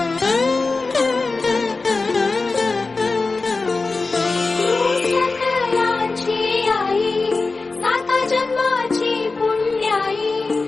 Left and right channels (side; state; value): right; quieter; 3.8 dB